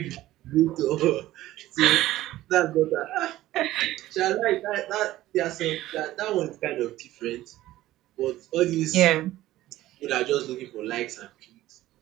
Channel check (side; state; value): left; quieter; 15.4 dB